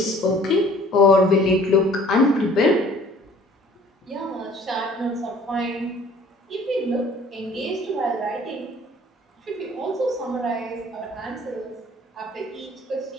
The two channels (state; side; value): normal; both; correlation 0.53